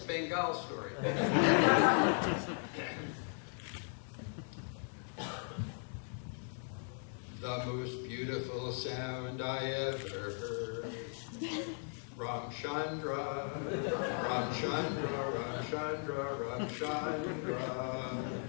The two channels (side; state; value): right; silent; 53 dB below the other